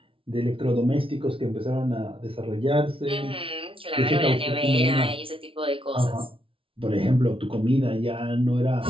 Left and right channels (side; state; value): left; late; 0.26 ms